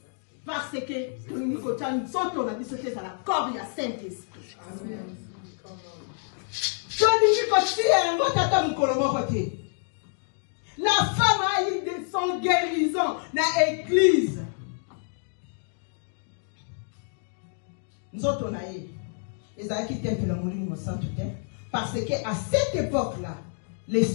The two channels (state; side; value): silent; right; 60 dB below the other